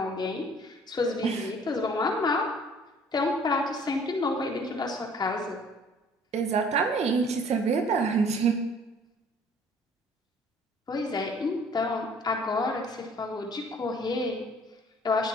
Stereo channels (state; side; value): normal; both; correlation 0.54